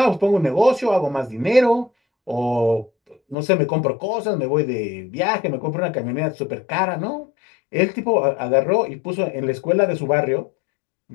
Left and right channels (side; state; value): right; drops out; at 3.4 s